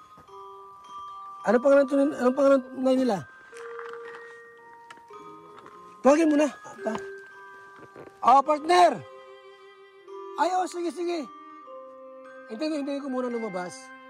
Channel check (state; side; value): identical; both; correlation 1.00